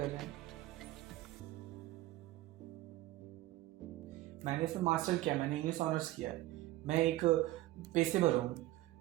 रहे हैं। मैंने इसमें मास्टर किया, मैंने इंग्लिश ऑनर्स किया है, मैं एक पेशेवर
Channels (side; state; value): left; quieter; 16.7 dB